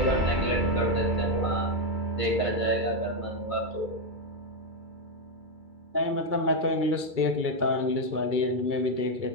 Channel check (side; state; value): left; late; 2.3 ms